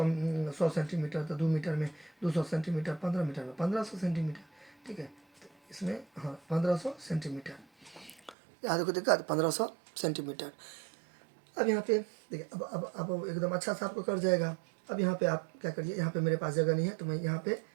सेंटीमीटर, तो 2 मीटर में 200 सेंटीमीटर, 15 मीटर में 1500 सेंटीमीटर, ठीक है। तो इसमें हाँ 1500 सेंटीमीटर, यहाँ देखो दिक्कत 1500 सेंटीमीटर। अब यहाँ पे देखिए, अब एकदम अच्छा सा आपको कर जाएगा। अब यहाँ पे आप क्या करिए, यहाँ पे मेरे पास जगह नहीं है तो मैं यहाँ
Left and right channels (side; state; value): left; drops out; at 8.3 s